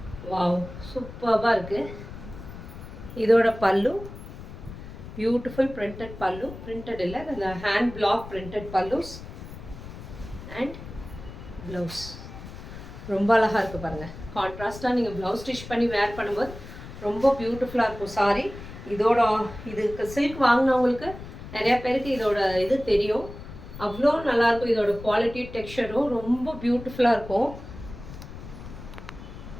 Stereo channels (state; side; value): noise; left; rumble, 13 dB below the sound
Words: வாவ், சூப்பராக இருக்குது. இதோட பல்லு பியூட்டிஃபுல் பிரிண்டட் பல்லு, பிரிண்டட் இல்லை, அந்த hand block printed pallus and blouse. ரொம்ப அழகாக இருக்குது பாருங்கள். கான்ட்ராஸ்ட்டாக நீங்கள் ப்ளவுஸ் ஸ்டிச் பண்ணி வேர் பண்ணும்போது ரொம்ப பியூட்டிஃபுல்லாக இருக்கும் சாரி. இதுக்கு சில்க் வாங்கினவங்களுக்கு நிறையா பேருக்கு இதோட இது தெரியும். அவ்வளோ நல்லாயிருக்கும். இதோட குவாலிட்டி டெக்ஸ்சரும் ரொம்ப பியூட்டிஃபுல்லாக இருக்கும்.